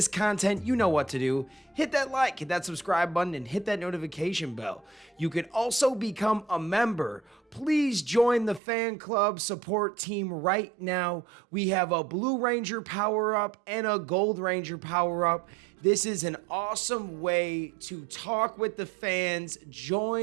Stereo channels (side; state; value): left; drops out; at 8.6 s